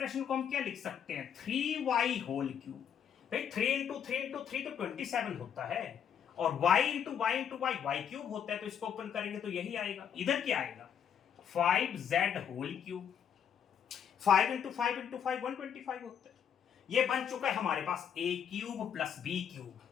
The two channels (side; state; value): right; quieter; 8.3 dB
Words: को हम क्या लिख सकते हैं, 3y होल क्यूब। भाई 3 इंटू 3 इंटू 3 तो 27 होता है, और y into Y into Y Y cube होता है, तो इसको ओपन करेंगे तो यही आएगा। इधर क्या आएगा, 5z whole cube. 5 into 5 into 5 125 होता है। ये बन चुका है हमारे पास a cube plus b cube,